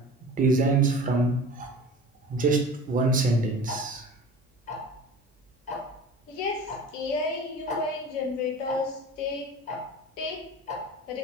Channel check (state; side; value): normal; both; correlation 0.38